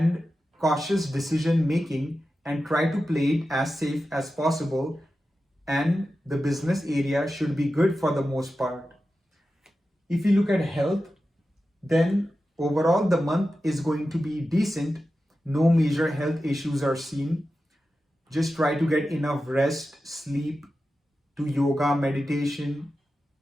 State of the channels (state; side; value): normal; both; correlation 0.92